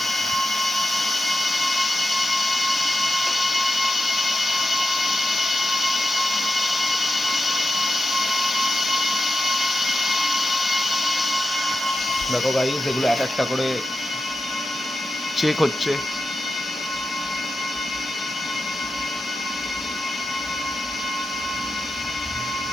দেখো গাইস এগুলো এক একটা করে চেক হচ্ছে।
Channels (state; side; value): normal; both; correlation 0.89